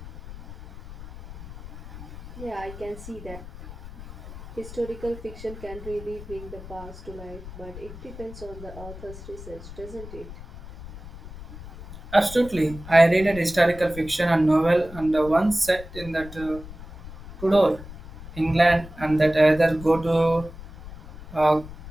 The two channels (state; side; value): noise; left; rumble, 14 dB below the sound